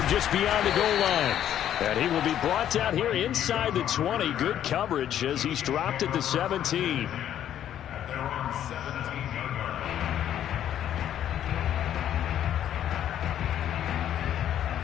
just beyond the goal line. And he will be brought down here inside the 20. Good coverage as he's dropped at the 17. At their own 17-yard line.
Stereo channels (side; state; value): right; quieter; 10.7 dB